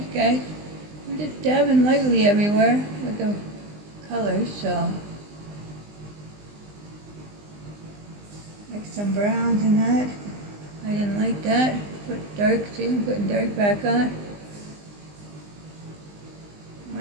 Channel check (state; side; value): late; left; 20 ms